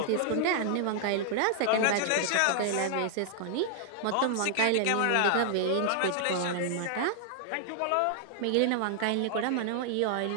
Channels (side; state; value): both; different; correlation 0.00